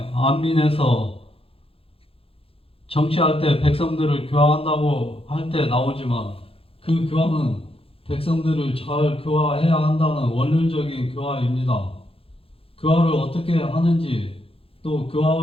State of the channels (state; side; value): late; right; 0.27 ms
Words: 안민에서 정치할 때 백성들을 교화한다고 할 때 나오지만 그 교화는 백성들을 잘 교화해야 한다는 원론적인 교화입니다. 교화를 어떻게 하는지 또